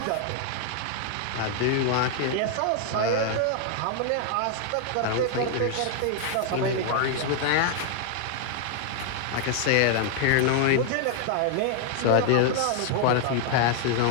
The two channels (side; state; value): both; different; correlation 0.00